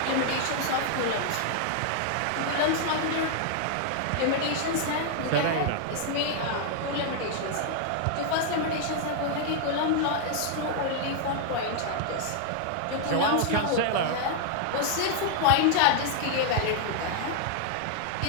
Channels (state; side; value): different; both; correlation 0.00